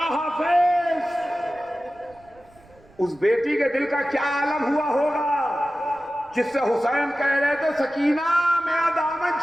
حافظ، اس بیٹی کے دل کا کیا عالم ہوا ہوگا جس سے حسین کہہ رہے تھے سکینہ میرا دامن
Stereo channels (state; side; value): noise; right; rumble, 28 dB below the sound